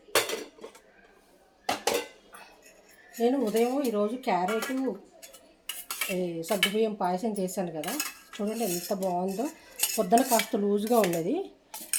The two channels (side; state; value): both; identical; correlation 1.00